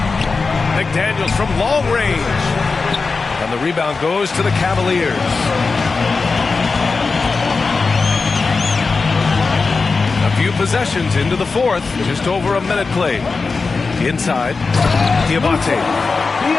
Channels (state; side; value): quieter; right; 4.3 dB